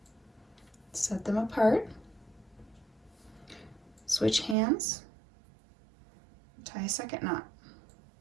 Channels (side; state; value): left; drops out; at 4.5 s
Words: Set them apart. Switch hands. Tie a second knot.